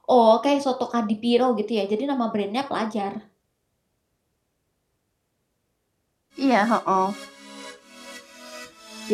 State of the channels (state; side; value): identical; both; correlation 1.00